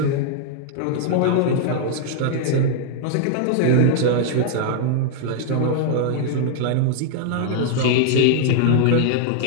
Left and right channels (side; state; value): both; different; correlation -0.01